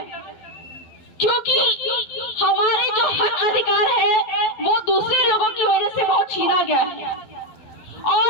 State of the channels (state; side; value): late; right; 11 ms